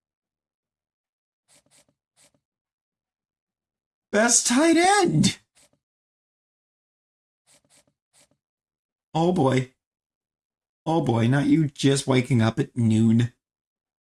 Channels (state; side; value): identical; both; correlation 1.00